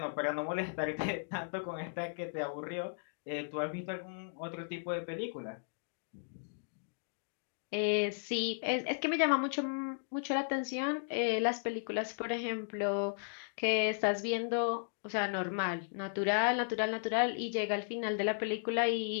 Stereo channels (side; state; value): right; silent; digital silence